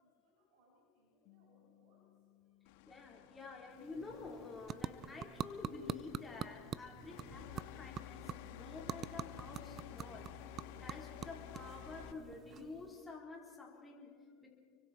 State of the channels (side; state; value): both; normal; correlation 0.50